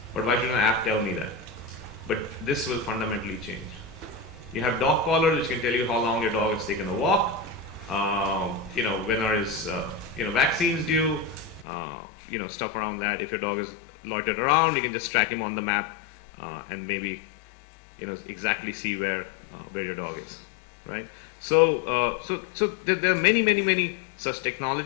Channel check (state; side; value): drops out; right; at 11.7 s